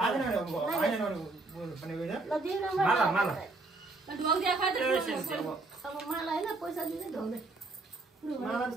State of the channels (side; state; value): left; quieter; 3.3 dB